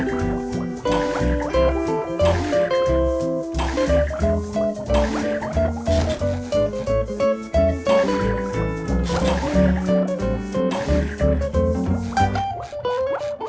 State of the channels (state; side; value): identical; both; correlation 1.00